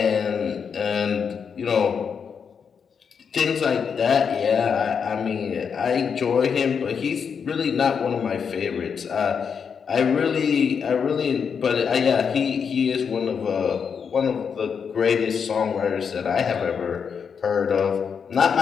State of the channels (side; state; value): right; quieter; 6.6 dB